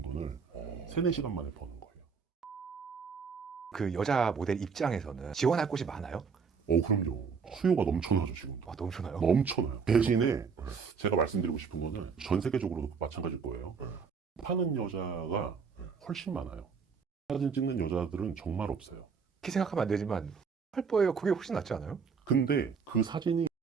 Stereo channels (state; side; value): quieter; left; 5.8 dB